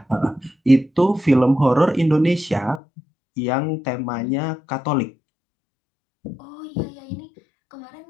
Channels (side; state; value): right; drops out; at 2.8 s